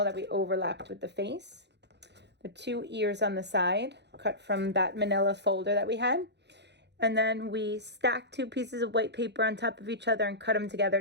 that we overlapped with the face. The two ears on the side, cut from that manila folder that we had. And then we stacked two pieces of white paper on top of each other and cut them together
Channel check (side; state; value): left; late; 0.50 ms